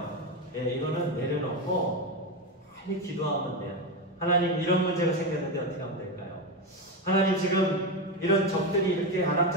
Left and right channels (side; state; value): both; normal; correlation 0.13